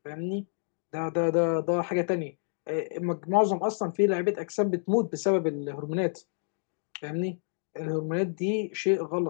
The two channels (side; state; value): right; silent; digital silence